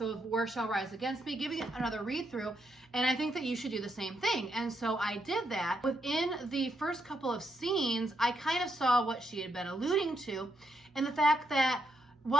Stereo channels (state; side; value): normal; both; correlation 0.79